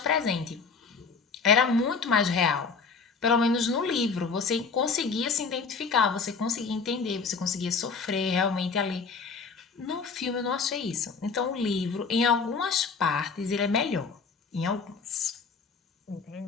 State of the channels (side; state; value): right; quieter; 5.1 dB